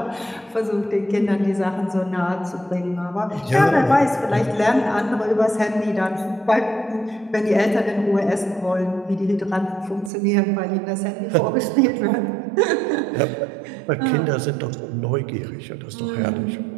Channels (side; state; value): left; drops out; at 10.1 s